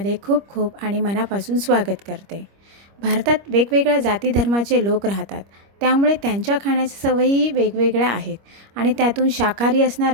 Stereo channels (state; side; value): late; left; 25 ms